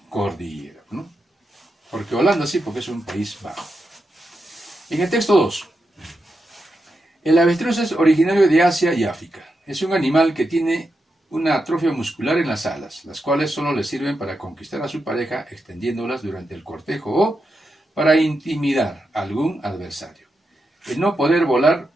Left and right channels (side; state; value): both; normal; correlation 0.86